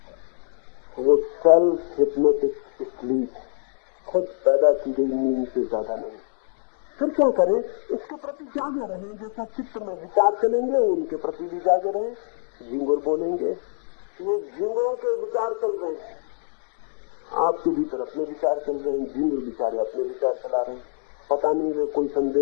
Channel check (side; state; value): right; silent; 62 dB below the other